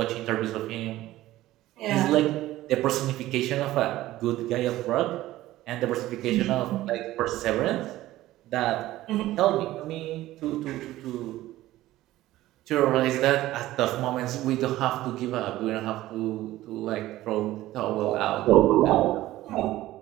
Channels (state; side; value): quieter; left; 15.7 dB